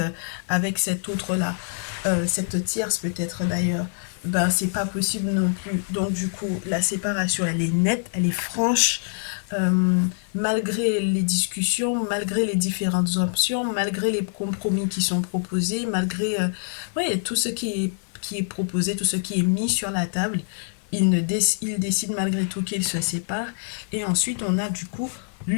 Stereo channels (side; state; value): right; silent; 56 dB below the other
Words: avec cette autre-là, cette tierce peut-être d'ailleurs, ben c'est pas possible non plus. Donc du coup, la séparation, elle est nette, elle est franche, euh, malgré les discussions, malgré les différentes options, malgré les compromis qui sont proposés, malgré ouais, tout ce qui est proposé, tout ce qui est mis sur la table, il décide malgré tout qu'il se sépare. Et ensuite, on a du coup